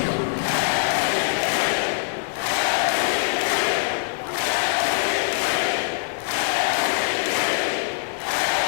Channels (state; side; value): silent; right; digital silence